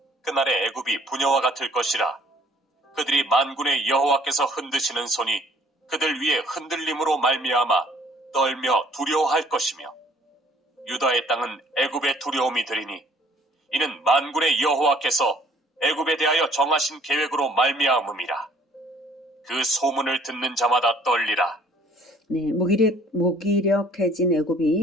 그날의 애굽이 부녀와 같을 것이라. 그들이 만군의 여호와께서 흔드시는 손이 그들 위에 흔들림으로 말미암아 떨며 두려워할 것이며 유다의 땅은 애굽의 두려움이 되리니 이는 만군의 여호와께서 애굽에 대하여 정하신 계획으로 말미암음이라. 그 소문을 듣는 자마다 떨리라. 네, 무기력해진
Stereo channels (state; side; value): normal; both; correlation 0.57